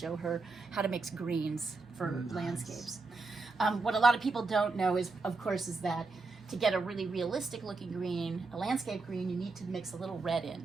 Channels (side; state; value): left; quieter; 3.8 dB